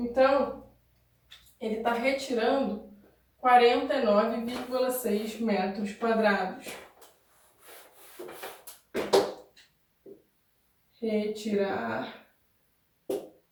ele está retirando 49,6 metros quadrados. Retirar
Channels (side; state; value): both; identical; correlation 1.00